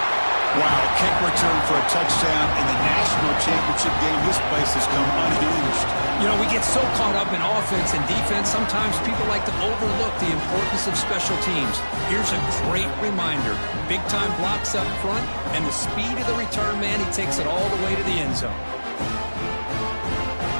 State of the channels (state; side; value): inverted; both; correlation -1.00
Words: Wow, kick return for a touchdown in the national championship game. This place has come unhinged. You know, we get so caught up in offense and defense, sometimes people like to overlook the importance of special teams. Here's a great reminder. Big-time blocks up front, and the speed of the return man, he takes it all the way to the end zone.